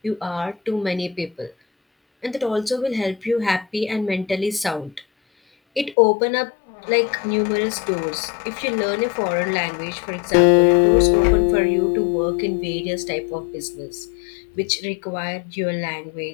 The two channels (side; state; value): right; drops out; at 6.0 s